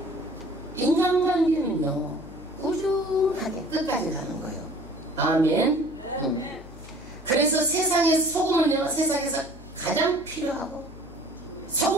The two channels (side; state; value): left; noise; hum, 19 dB below the sound